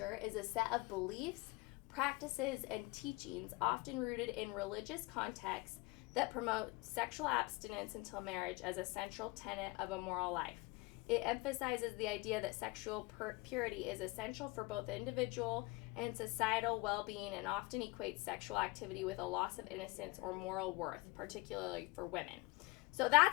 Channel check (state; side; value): quieter; right; 23.9 dB